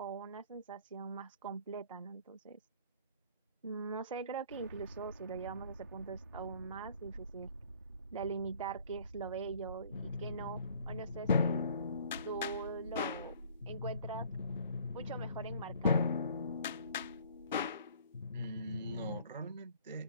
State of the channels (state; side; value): inverted; both; correlation -0.55